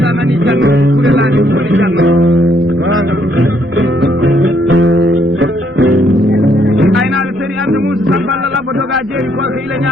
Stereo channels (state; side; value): normal; both; correlation 0.71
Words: sa nani janno kurelani woni janno aynaɗo seri ande musa samballa labbo doga jeeri korko ila